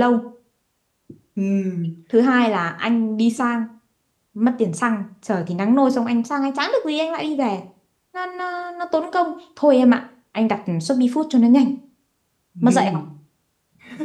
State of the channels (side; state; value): both; identical; correlation 1.00